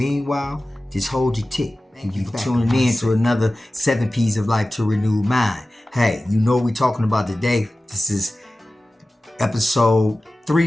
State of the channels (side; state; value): both; normal; correlation 0.96